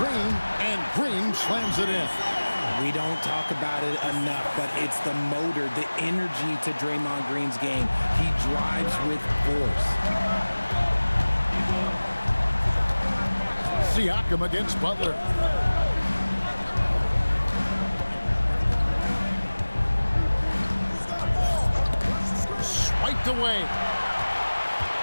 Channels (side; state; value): both; inverted; correlation -1.00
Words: and Green slams it in. We don't talk about it enough, but it's the motor, the energy to Draymond Green's game. He drives with force. Siakam against Butler. Swiped away.